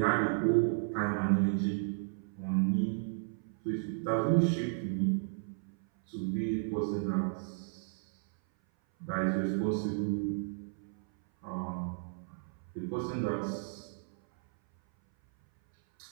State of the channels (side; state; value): left; silent; 55 dB below the other